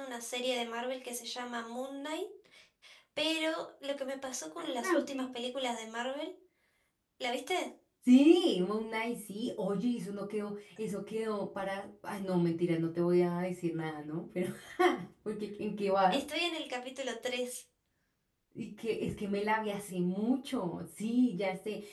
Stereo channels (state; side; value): identical; both; correlation 1.00